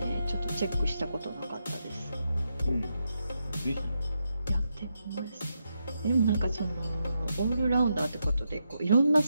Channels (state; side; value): inverted; both; correlation -0.84